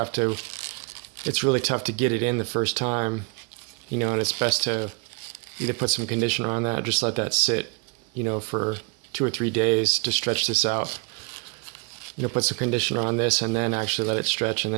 to, it's really tough to get it in the first time, you know, and it's best to either put some conditioner on that or just let that sit, you know, for 2 or 3 days to stretch this out. You know, put some conditioner on this and then actually let it stretch, and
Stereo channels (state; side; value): quieter; left; 33.8 dB